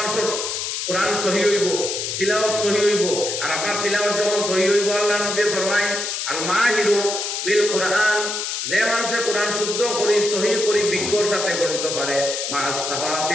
কোরআন সহি হইব তিলাওয়াত সহি হইব আর আপনার তিলাওয়াত যখন সহি হইব আল্লাহ নবী ফরমায় আল মাহিরু বিল কোরআন যে মানুষে কোরআন শুদ্ধ করি সহি করি বিজ্ঞর সাথে পড়িতে পারে মাস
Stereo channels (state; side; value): noise; left; hiss, 3 dB below the sound